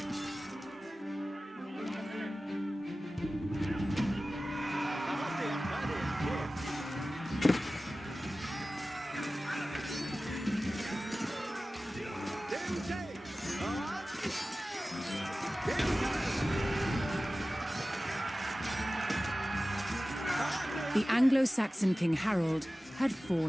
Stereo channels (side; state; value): both; normal; correlation 0.96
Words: The Anglo-Saxon King Harold had